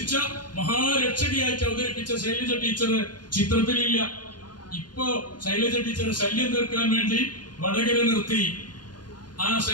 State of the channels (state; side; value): late; right; 0.70 ms